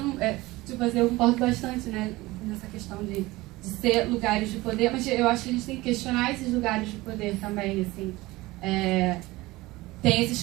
tipo assim, eu concordo bastante, né, nessa questão de ser lugares de poder, mas eu acho que a gente tem que questionar esses lugares de poder também, assim. Tem esses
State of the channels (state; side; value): quieter; left; 19.9 dB